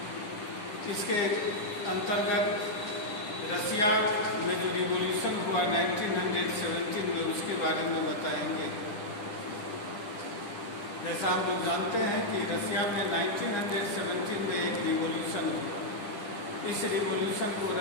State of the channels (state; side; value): late; right; 10 ms